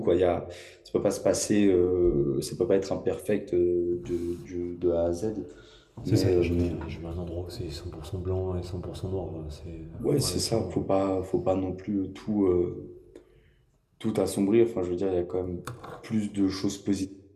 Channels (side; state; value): both; identical; correlation 1.00